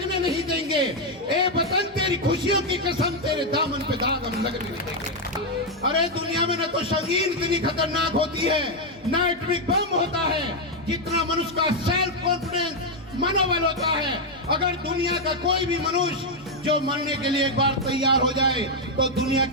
नहीं देंगे। ए वतन तेरी खुशियों की कसम, तेरे दामन पे दाग हम लगने नहीं देंगे। अरे दुनिया में न तो संगीन इतनी खतरनाक होती है, न एटॉमिक बम होता है, जितना मनुष्य का सेल्फ कॉन्फिडेंस, मनोबल होता है। अगर दुनिया का कोई भी मनुष्य जो मरने के लिए एक बार तैयार हो जाए तो दुनिया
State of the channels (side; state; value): both; normal; correlation 0.01